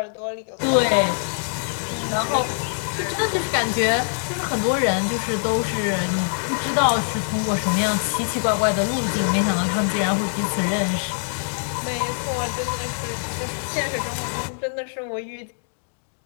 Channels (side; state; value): right; silent; digital silence